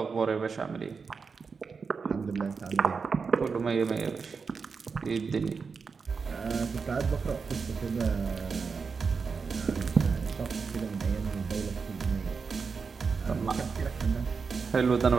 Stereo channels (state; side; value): quieter; left; 5.2 dB